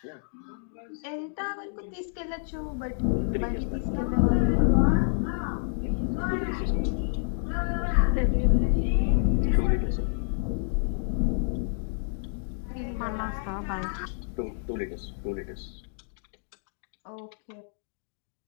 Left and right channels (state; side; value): silent; right; digital silence